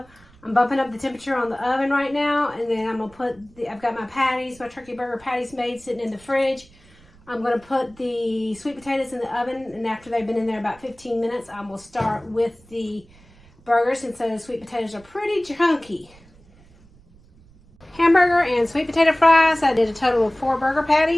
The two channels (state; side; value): noise; right; rumble, 27 dB below the sound